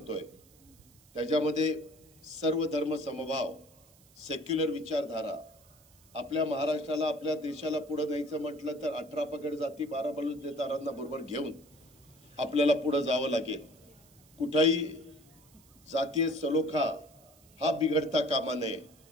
त्याच्यामध्ये सर्व धर्म समभाव, सेक्युलर विचारधारा, आपल्या महाराष्ट्राला आपल्या देशाला पुढे न्यायचं म्हटलं तर 18 पगड जाती 12 बलुतेदारांना बरोबर घेऊन आपल्याला पुढे जावं लागेल. कुठेही जातीय सलोखा हा बिघडता कामा नये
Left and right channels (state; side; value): noise; right; hiss, 27 dB below the sound